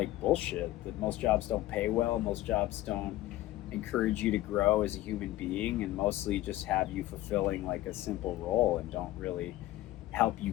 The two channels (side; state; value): right; quieter; 15.7 dB